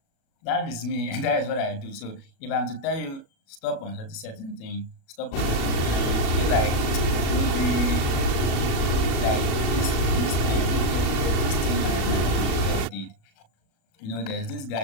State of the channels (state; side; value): late; right; 36 ms